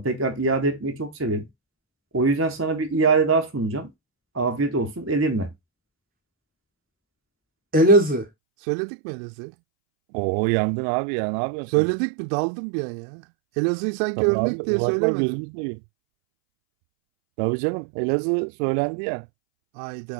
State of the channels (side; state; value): left; drops out; at 8.3 s